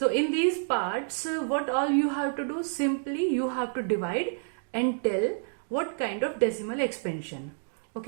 in these parts, what all you have to do, simply you have to divide and tell what kind of decimal expansion.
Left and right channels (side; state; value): left; silent; digital silence